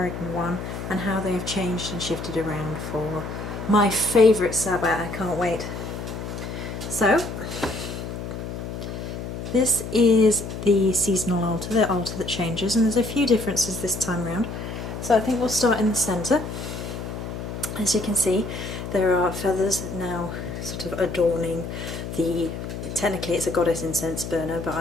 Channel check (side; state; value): left; noise; hum, 7 dB below the sound